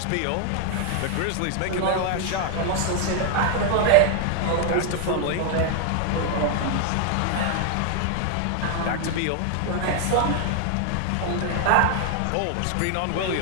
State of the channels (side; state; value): both; different; correlation 0.00